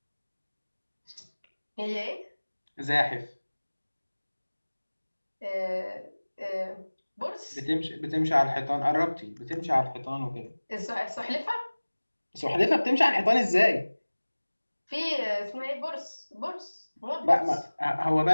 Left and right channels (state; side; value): inverted; both; correlation -1.00